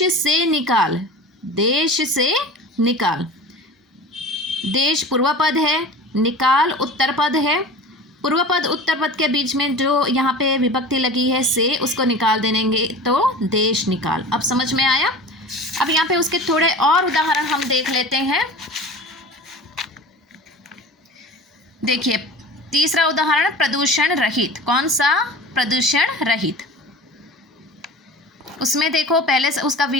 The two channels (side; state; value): both; normal; correlation 0.36